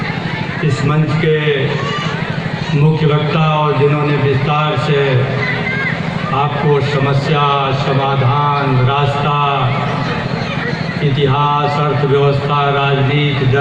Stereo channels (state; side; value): identical; both; correlation 1.00